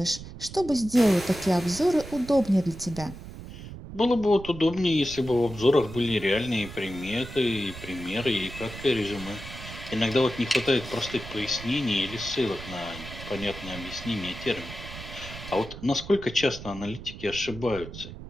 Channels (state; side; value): noise; right; rumble, 12 dB below the sound